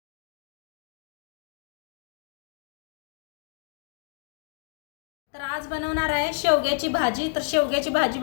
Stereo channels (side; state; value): right; silent; digital silence